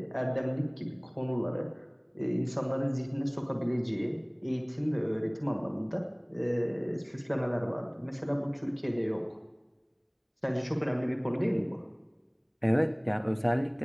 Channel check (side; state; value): both; identical; correlation 1.00